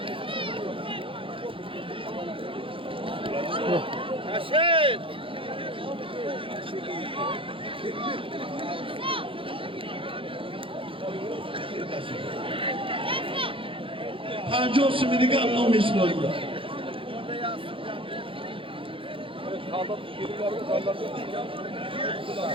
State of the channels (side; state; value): left; late; 0.25 ms